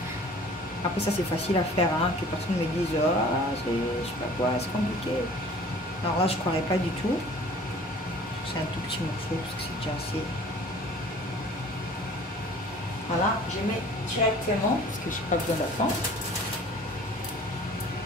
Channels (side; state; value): both; normal; correlation 0.48